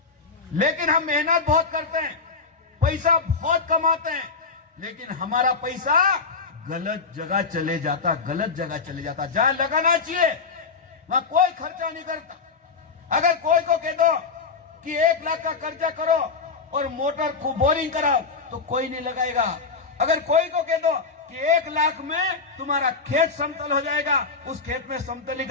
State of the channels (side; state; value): right; quieter; 4.7 dB